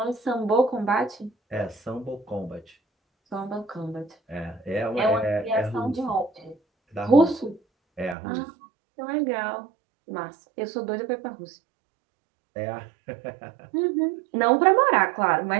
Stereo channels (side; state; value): left; drops out; at 8.2 s